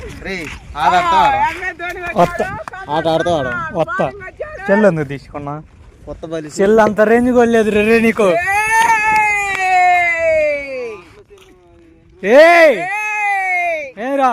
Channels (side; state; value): both; identical; correlation 1.00